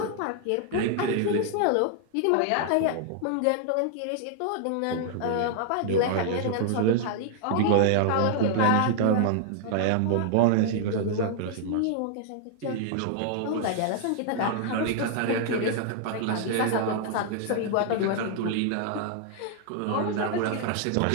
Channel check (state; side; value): different; both; correlation 0.00